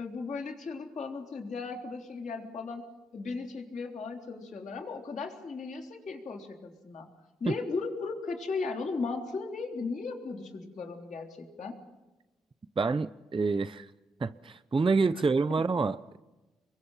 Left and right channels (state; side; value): normal; both; correlation 0.82